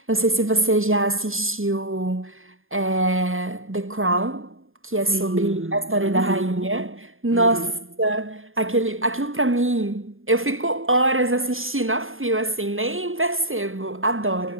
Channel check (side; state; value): left; late; 0.60 ms